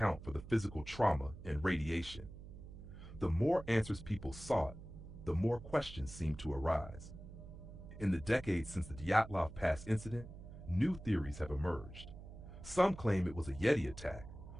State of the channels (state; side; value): noise; right; hum, 14 dB below the sound